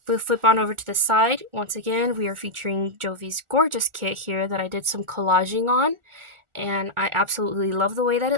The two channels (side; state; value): left; late; 1.4 ms